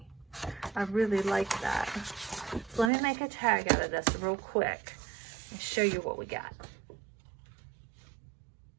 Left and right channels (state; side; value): drops out; left; at 2.9 s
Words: I really like that. So let me make a tag out of this real quick and show you what we got.